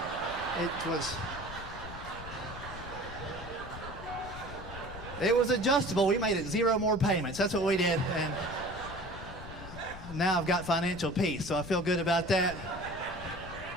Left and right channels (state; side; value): noise; left; rumble, 12 dB below the sound